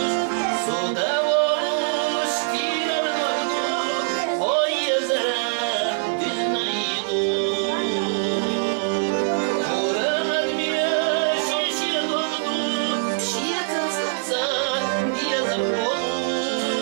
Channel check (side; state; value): left; silent; digital silence